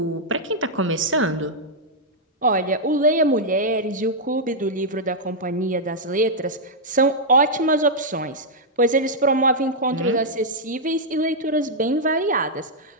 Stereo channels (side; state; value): both; normal; correlation -0.05